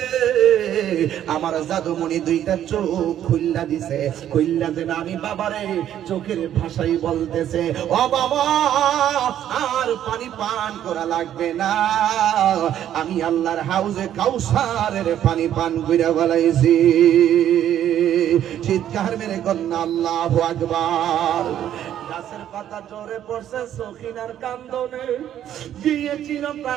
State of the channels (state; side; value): quieter; left; 10.9 dB